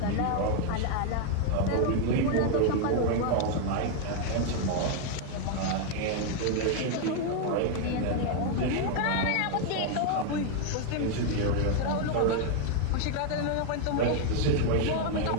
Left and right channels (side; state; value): both; different; correlation 0.00